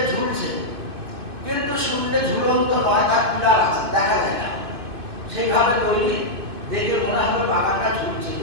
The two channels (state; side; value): late; left; 2.6 ms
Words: ঝুলছে, কিন্তু শূন্যে ঝুলন্ত নয়, তার পিলার আছে, দেখা যায় না। সেইভাবে তৈরি, দেখে মনে হবে বাগানটা ঝুলছে,